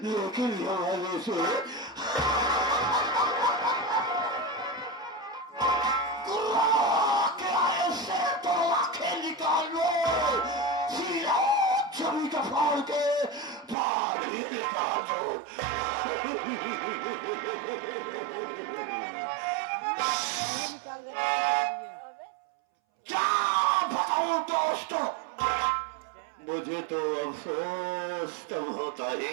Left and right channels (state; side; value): drops out; left; at 13.8 s